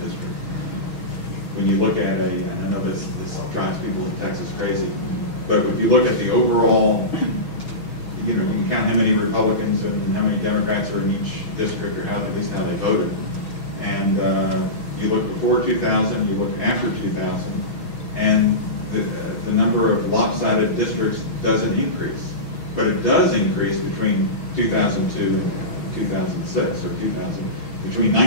districts. When you look at and I know this drives people in Texas crazy, but if you look at the overall, you can count how many Republicans and how many Democrats are in each district, or at least how they voted. And you look before 2000, you look after 2000, and the number of lopsided districts doesn't increase. But it does increase between 2002 and 2006, or between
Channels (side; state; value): right; late; 6.3 ms